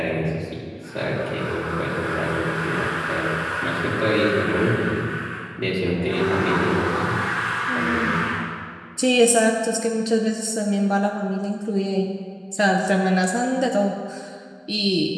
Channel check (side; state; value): both; identical; correlation 1.00